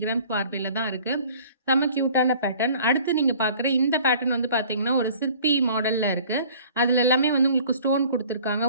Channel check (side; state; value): both; inverted; correlation -0.50